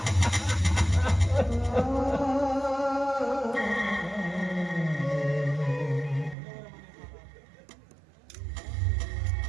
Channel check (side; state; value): left; drops out; at 6.4 s